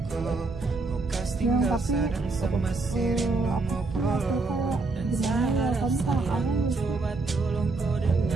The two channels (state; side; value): quieter; left; 3.6 dB